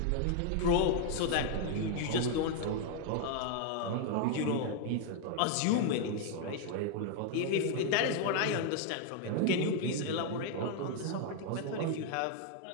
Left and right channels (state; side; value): different; both; correlation 0.00